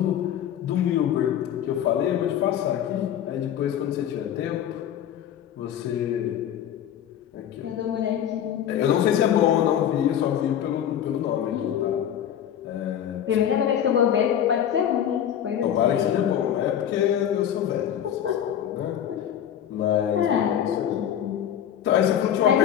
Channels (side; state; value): right; quieter; 9.9 dB